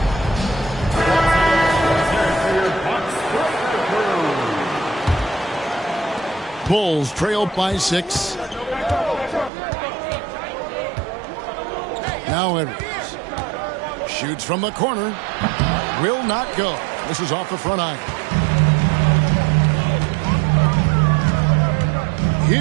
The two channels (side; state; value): left; drops out; at 9.5 s